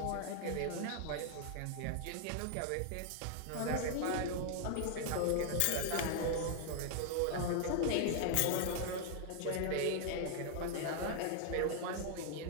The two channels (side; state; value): both; different; correlation 0.00